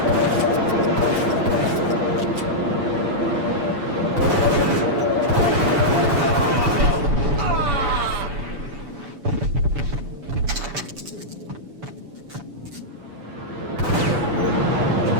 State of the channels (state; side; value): late; left; 7.0 ms